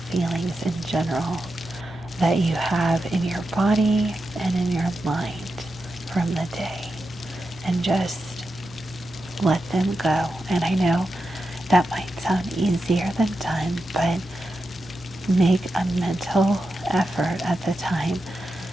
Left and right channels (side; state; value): both; normal; correlation 0.89